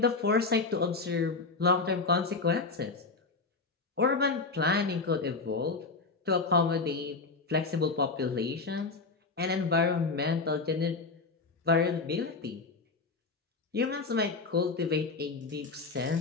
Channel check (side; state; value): right; quieter; 4.1 dB